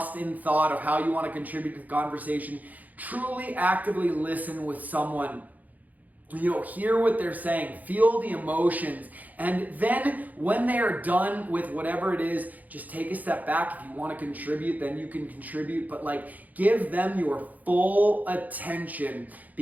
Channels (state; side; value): late; left; 0.080 ms